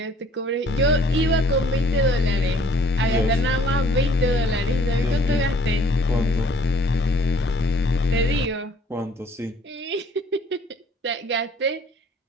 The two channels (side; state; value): both; normal; correlation 0.57